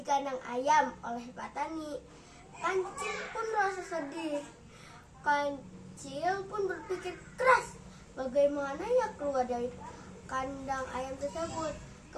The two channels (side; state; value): both; identical; correlation 1.00